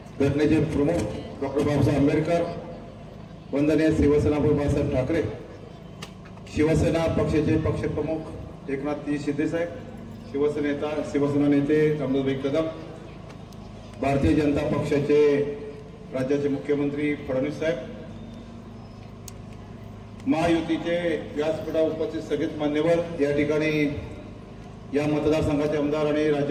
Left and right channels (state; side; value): identical; both; correlation 1.00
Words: घटनेचे प्रमुख डॉक्टर बाबासाहेब आंबेडकर, वंदनीय शिवसेना बाळासाहेब ठाकरे, शिवसेना पक्षाचे पक्षप्रमुख एकनाथजी शिंदे साहेब, शिवसेना नेते रामदासभाई कदम, भारतीय जनता पक्षाचे राज्याचे मुख्यमंत्री फडणवीस साहेब, महायुतीचे व्यासपीठावर उपस्थित सगळेच मान्यवर, या ठिकाणी या मतदारसंघाचे आमदार आणि